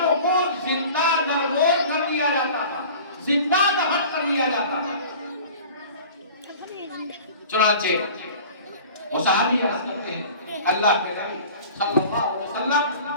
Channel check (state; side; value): inverted; both; correlation -0.42